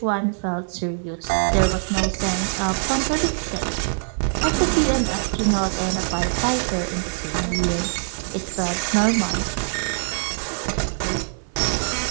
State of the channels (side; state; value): left; silent; 58 dB below the other